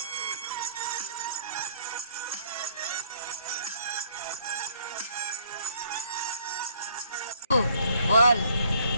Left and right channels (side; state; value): both; inverted; correlation -0.62